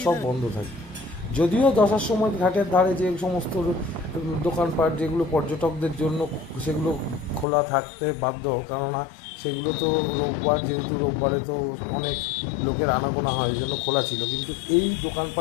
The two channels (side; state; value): right; drops out; at 7.5 s